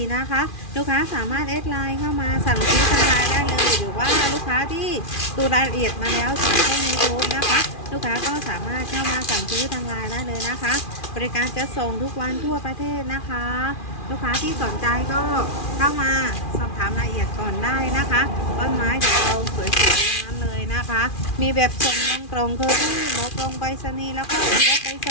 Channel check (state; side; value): late; right; 2.4 ms